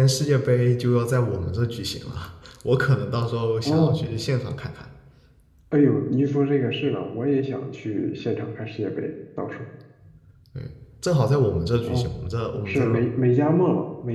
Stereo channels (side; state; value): both; identical; correlation 1.00